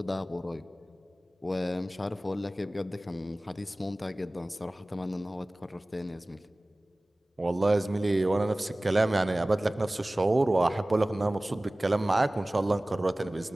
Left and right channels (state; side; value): normal; both; correlation 0.98